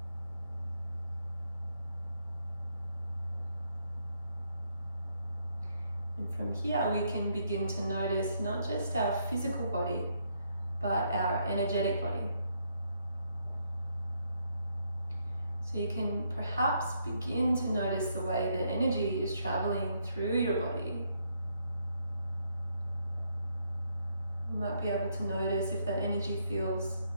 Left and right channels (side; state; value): both; inverted; correlation -0.75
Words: And from here we can begin to notice not just our physical body, but our energetic body. So you can perhaps begin to notice the way that energy is traveling through your body. You might be able to notice if that energy feels